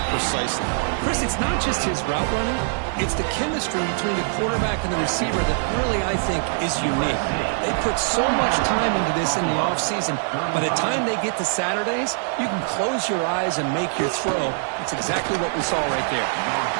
precisely? Chris, it's not just his route running. It's the chemistry between the quarterback and the receiver that really, I think, is unique. They put so much time into this in the offseason. By the time they get to Saturdays, you can close your eyes and make your throw. It's exactly what we saw right there.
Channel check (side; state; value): left; silent; digital silence